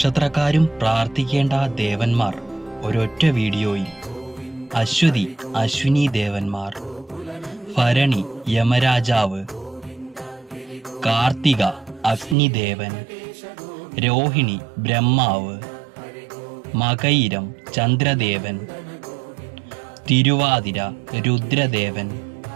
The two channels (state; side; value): drops out; left; at 12.4 s